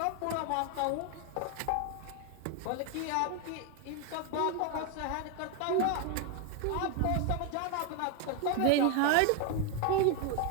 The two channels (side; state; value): both; different; correlation 0.01